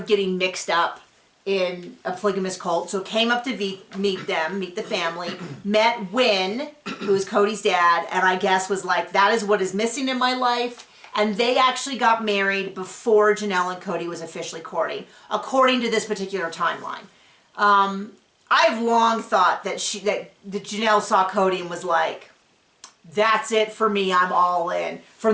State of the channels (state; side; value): identical; both; correlation 1.00